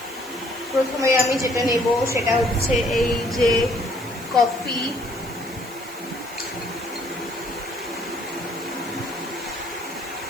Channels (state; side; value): noise; right; hiss, 18 dB below the sound